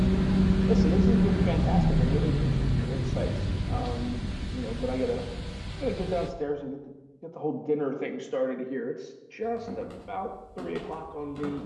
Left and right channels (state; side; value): identical; both; correlation 1.00